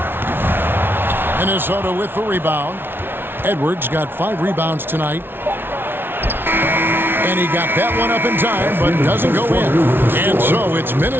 Minnesota with the rebound. Edwards got 5 rebounds tonight. And he got that one up in time, but doesn't go in. And so it's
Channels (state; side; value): late; left; 0.11 ms